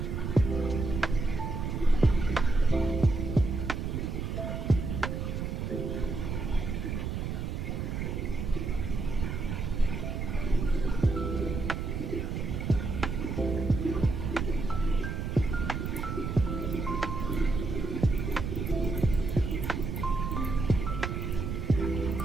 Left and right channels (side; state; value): right; noise; rumble, 3 dB below the sound